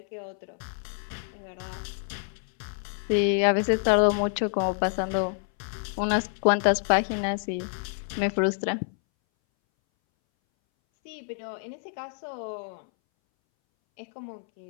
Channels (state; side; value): silent; right; 60 dB below the other